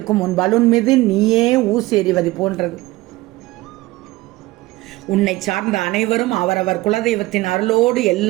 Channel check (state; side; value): quieter; left; 19.3 dB